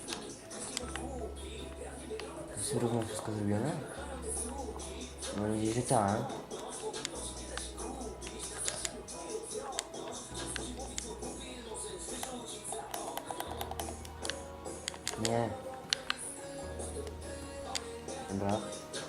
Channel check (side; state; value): both; identical; correlation 1.00